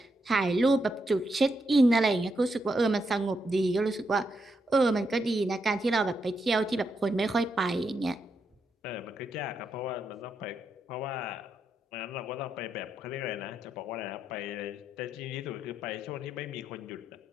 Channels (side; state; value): both; normal; correlation 0.82